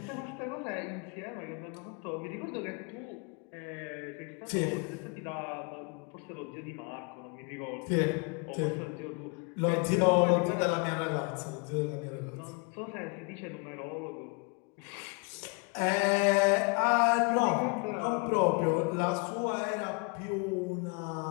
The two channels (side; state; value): right; quieter; 33.0 dB